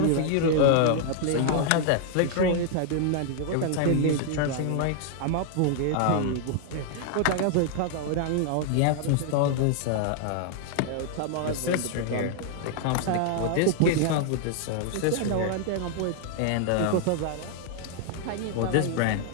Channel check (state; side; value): different; both; correlation 0.00